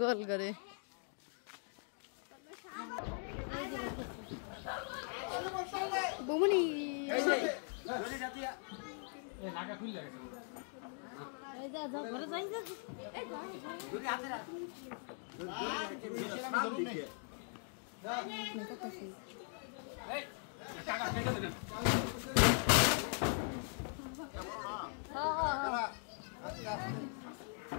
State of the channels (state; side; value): silent; right; 51 dB below the other